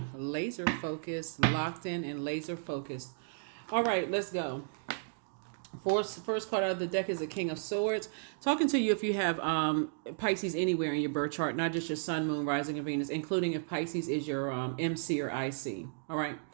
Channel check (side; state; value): left; silent; digital silence